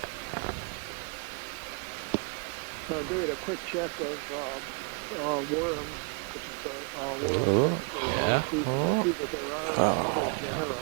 So doing a quick check of worms, which is the world register of marine species, I see that there are other genera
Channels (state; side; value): quieter; left; 38.0 dB